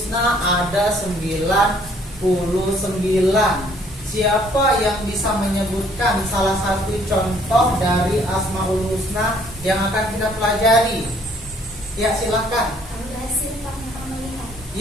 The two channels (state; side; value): normal; both; correlation 0.62